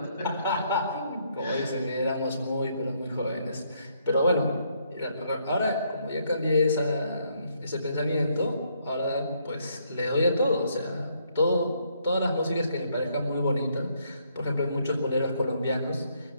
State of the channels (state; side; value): inverted; both; correlation -0.72